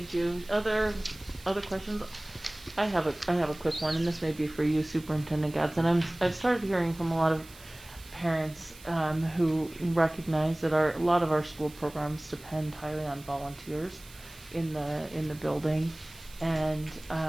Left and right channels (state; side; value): noise; right; hiss, 20 dB below the sound